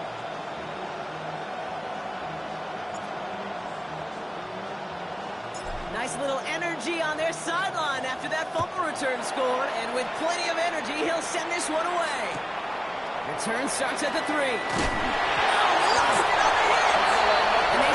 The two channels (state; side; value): identical; both; correlation 1.00